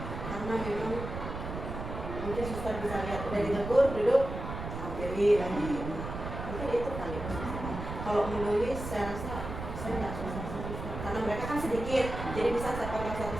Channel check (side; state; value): right; noise; rumble, 7 dB below the sound